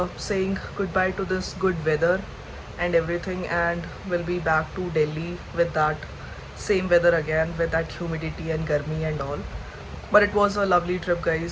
saying goodbye to this good weather and everything and we'll be back to Delhi with that same weather again, with that humidity and garmi and all. But it was a lovely trip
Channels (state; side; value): identical; both; correlation 1.00